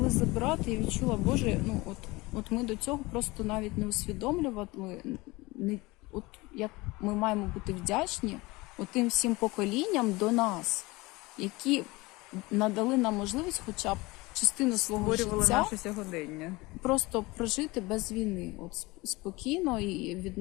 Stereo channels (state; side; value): quieter; right; 22.5 dB